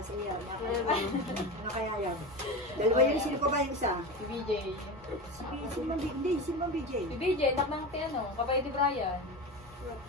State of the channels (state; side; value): normal; both; correlation 0.24